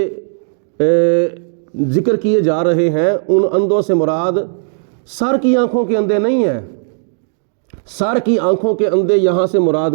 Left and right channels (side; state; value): left; silent; digital silence